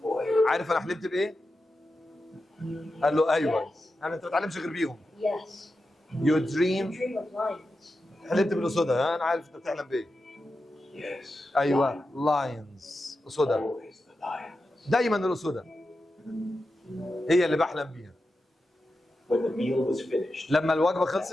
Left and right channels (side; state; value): both; normal; correlation 0.90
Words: boy? عارف انا حلمت بايه؟ قال له ايوه. انا انت ما بتعلمش غير بيهم. Yes. يو You دريم. dream of lions. حلمت بالاسودة. انا عارف انت بتحلم بايه. Yes. ايوه، لاينز، اسودة. Always the lions. دايما الاسودة هي اللي بحلم بيها. When the meal was finished, لما الوجبه